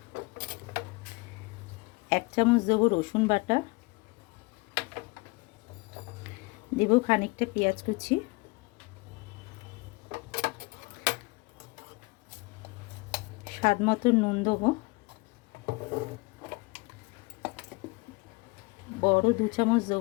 1 চামচ দেবো রসুন বাটা, দেবো খানিকটা পেঁয়াজ কুচি, স্বাদ মতো নুন দেবো, বড় 2 চামচ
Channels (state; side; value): quieter; right; 25.8 dB